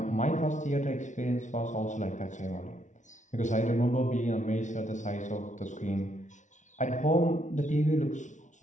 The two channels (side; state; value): right; late; 0.36 ms